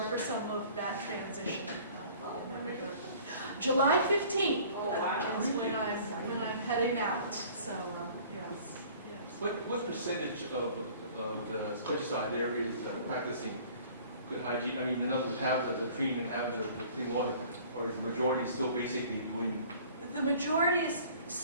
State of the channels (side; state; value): both; inverted; correlation -0.50